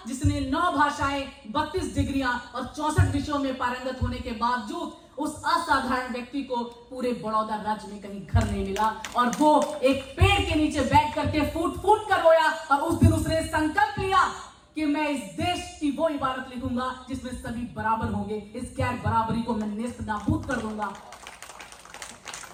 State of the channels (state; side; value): identical; both; correlation 1.00